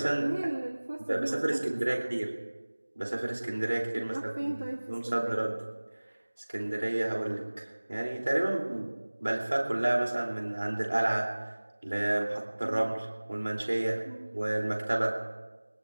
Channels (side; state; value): both; inverted; correlation -1.00